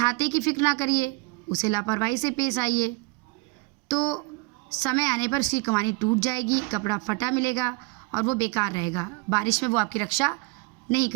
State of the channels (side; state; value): left; quieter; 26.4 dB